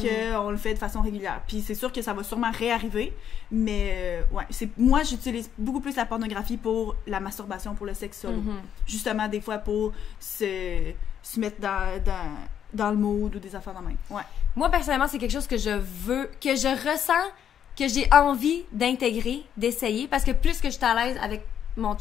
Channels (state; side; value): quieter; right; 9.1 dB